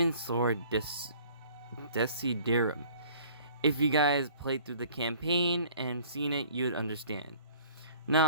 Sword Desiderum. If you guys played through the campaign and seen it, you'd understand.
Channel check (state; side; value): inverted; both; correlation -0.52